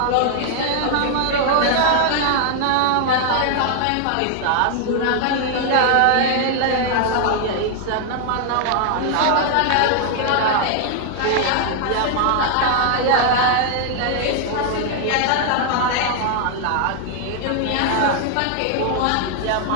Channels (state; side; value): different; both; correlation 0.00